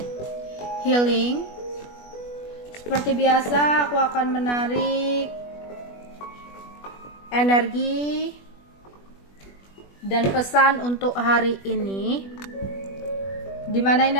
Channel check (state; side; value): late; right; 21 ms